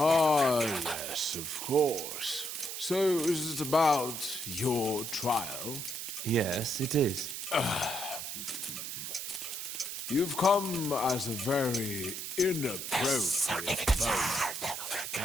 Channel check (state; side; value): noise; right; hiss, 6 dB below the sound